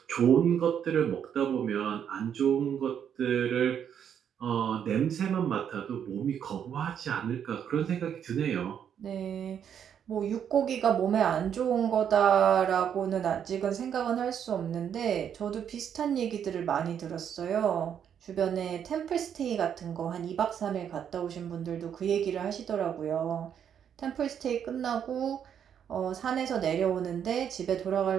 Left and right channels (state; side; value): quieter; left; 8.6 dB